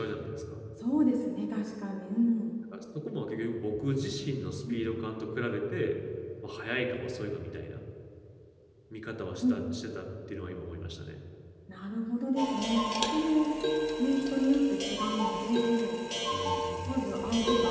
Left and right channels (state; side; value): identical; both; correlation 1.00